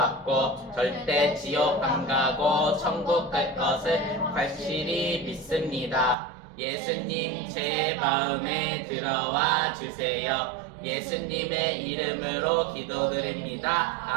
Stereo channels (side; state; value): left; drops out; at 6.2 s